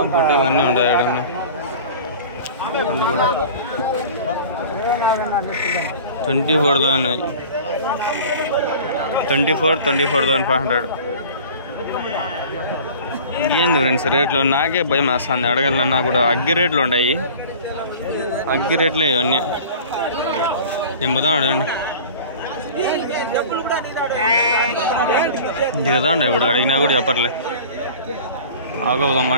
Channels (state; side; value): inverted; both; correlation -0.41